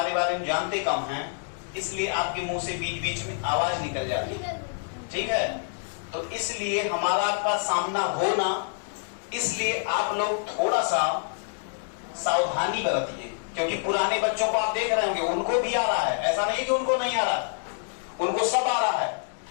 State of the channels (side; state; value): right; silent; digital silence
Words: बारे में जानते कम हैं, इसलिए आपके मुंह से बीच बीच में आवाज निकल जाती है, ठीक है? तो इसलिए हमारा आपका सामना हो ना, इसलिए आप लोग थोड़ा सा सावधानी बरतिए, क्योंकि पुराने बच्चों को आप देख रहे होंगे, उनको भी आ रहा है, ऐसा नहीं कि उनको नहीं आ रहा, उनको सब आ रहा है,